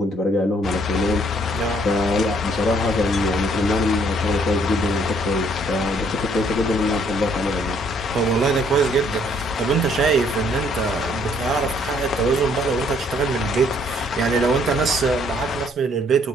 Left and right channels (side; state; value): both; normal; correlation 0.64